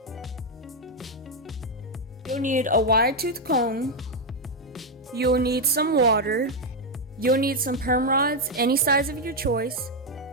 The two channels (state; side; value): normal; both; correlation 0.02